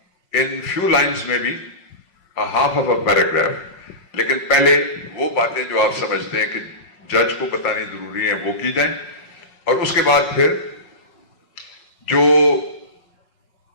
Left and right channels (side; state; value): right; late; 5.4 ms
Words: in few lines, maybe a half of a paragraph. لیکن پہلے وہ باتیں جو آپ سمجھتے ہیں کہ جج کو بتانی ضروری ہیں وہ کی جائیں، اور اس کے بعد پھر جو